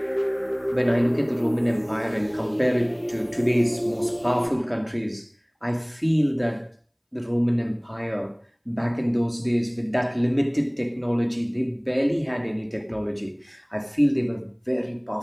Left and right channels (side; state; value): both; identical; correlation 1.00